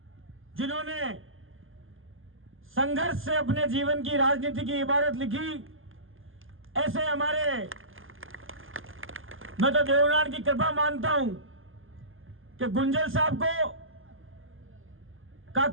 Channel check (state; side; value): late; left; 0.59 ms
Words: जिन्होंने संघर्ष से अपने जीवन की राजनीति की इबारत लिखी, ऐसे हमारे, मैं तो देवनान की कृपा मानता हूं कि गुंजल साहब को का